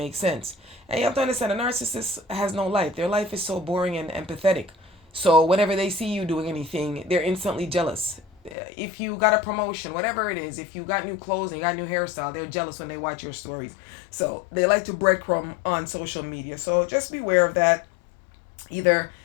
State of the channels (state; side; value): drops out; right; at 8.6 s